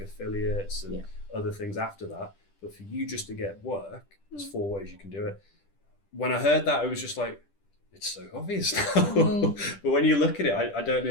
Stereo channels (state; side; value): late; right; 10 ms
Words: affiliates and other things after that. But for you just to get work, there's 4 ways you can do it. When I heard that, it was just like, it's so obvious now. But when you look at it, I don't know